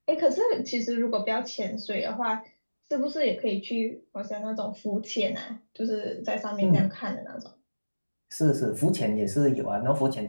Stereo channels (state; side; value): inverted; both; correlation -1.00